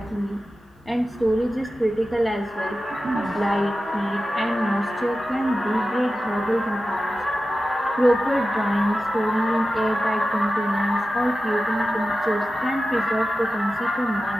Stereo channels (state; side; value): normal; both; correlation 0.93